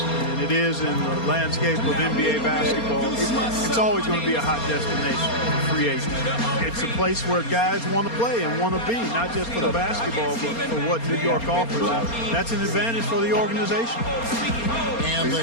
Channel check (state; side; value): late; right; 4.3 ms